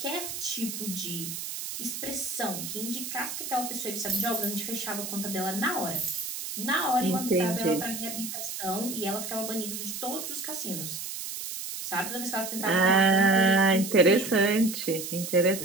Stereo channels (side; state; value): right; noise; hiss, 6 dB below the sound